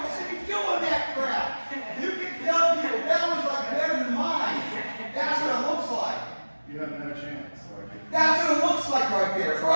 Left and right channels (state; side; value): inverted; both; correlation -1.00